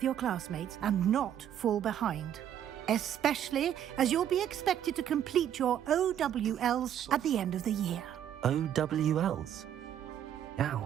your classmates and not fall behind. Especially as you'll be expected to complete your OWLs at the end of the year. OWLs?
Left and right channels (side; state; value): left; quieter; 10.2 dB